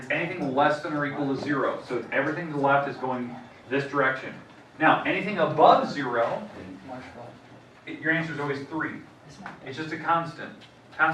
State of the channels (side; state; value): both; identical; correlation 1.00